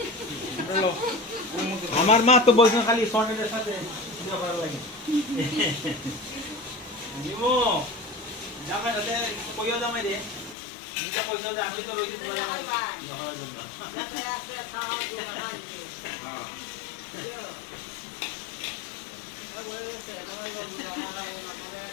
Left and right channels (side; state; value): right; drops out; at 10.6 s